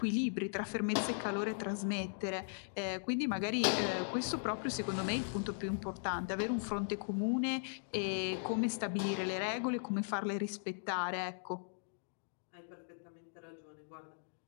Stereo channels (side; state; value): right; silent; digital silence